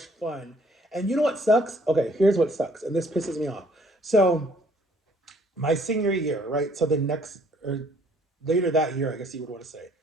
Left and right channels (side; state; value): both; normal; correlation 0.61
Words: fun. And you know what sucks? Okay, here's what sucks. And this pisses me off. So, my senior year, right? So, the next, or later that year, I guess you would want to say.